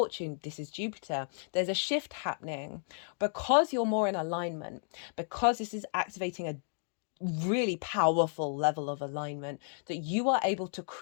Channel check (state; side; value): silent; right; digital silence